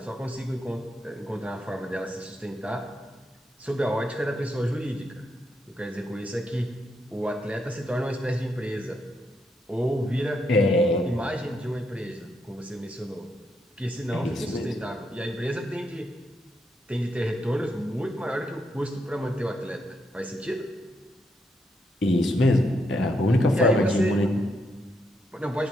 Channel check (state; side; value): normal; both; correlation 0.79